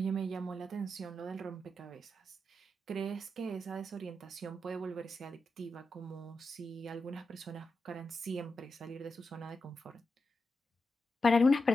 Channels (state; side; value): normal; both; correlation 0.88